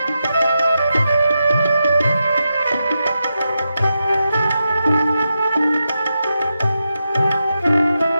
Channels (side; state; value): both; inverted; correlation -0.88